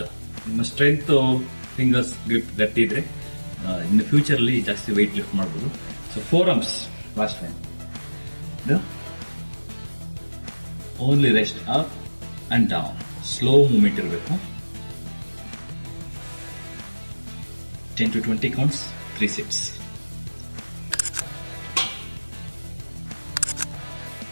ನಿಮ್ಮ strength fingers grip ಗಟ್ಟಿ ಇದ್ರೆ in future ಅಲ್ಲಿ ಜಾಸ್ತಿ weight lift ಮಾಡಬಹುದು. So 4 arms last time. Only rest up and down. Slow movement ಇರಬೇಕು. 10 to 20 counts, 3 sets.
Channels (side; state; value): both; inverted; correlation -1.00